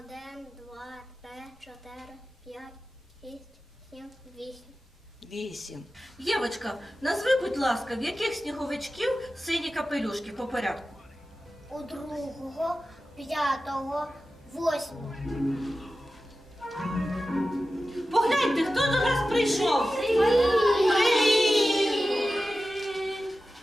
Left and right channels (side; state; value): both; normal; correlation 0.94